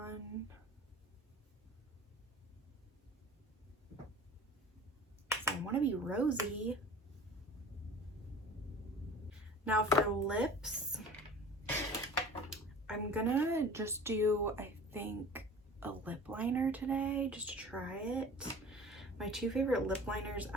So I want to be rosy. Now for lips, I'm gonna just do, I think, a lip liner today just to try it. My two favorite lip liners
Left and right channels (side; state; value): both; normal; correlation 0.42